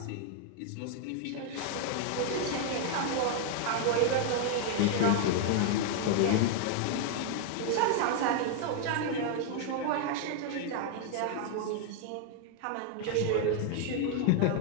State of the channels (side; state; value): both; different; correlation 0.00